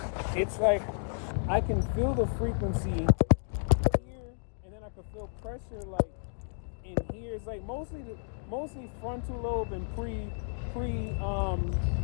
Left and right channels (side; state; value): right; silent; digital silence